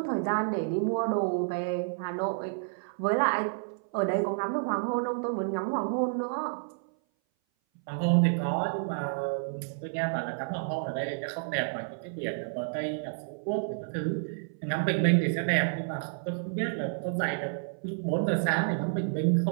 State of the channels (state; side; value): silent; left; 57 dB below the other